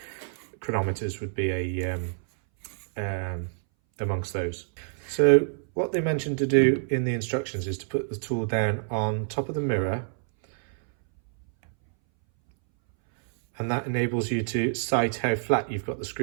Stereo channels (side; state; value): left; silent; 60 dB below the other